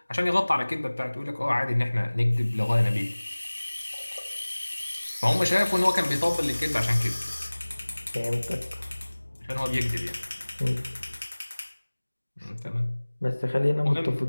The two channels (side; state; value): both; inverted; correlation -1.00